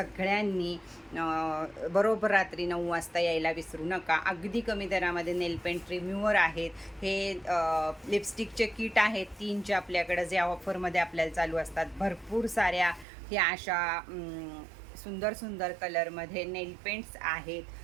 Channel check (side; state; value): left; drops out; at 13.1 s